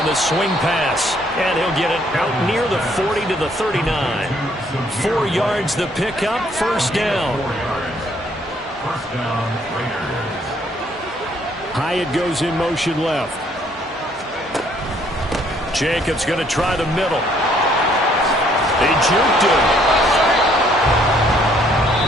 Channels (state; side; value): normal; both; correlation 0.65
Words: the swing pass. And he'll get it out near the 40 to the 39. 4 yards the pickup, 1st down. Hyatt goes in motion left. Jacobs going to try the middle. He juked him.